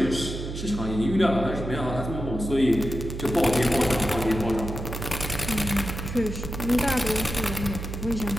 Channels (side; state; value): right; noise; hum, 7 dB below the sound